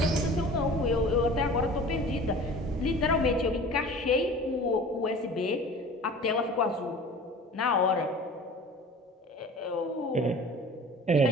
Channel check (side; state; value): both; normal; correlation 0.41